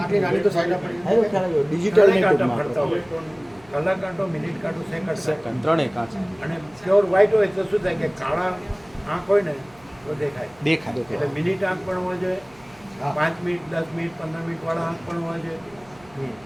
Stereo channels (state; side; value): noise; right; hum, 27 dB below the sound